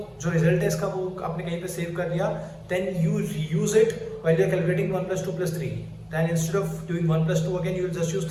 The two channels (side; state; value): both; identical; correlation 1.00